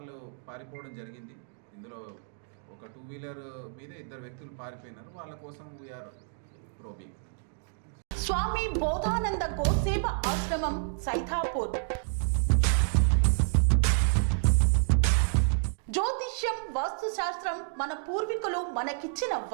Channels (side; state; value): left; silent; digital silence